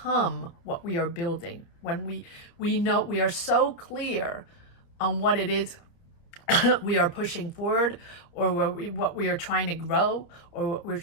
what we are building, when we know, we are so clear on what it is we are pushing forward, or what we are trying to grow, or what we're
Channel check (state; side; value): late; right; 30 ms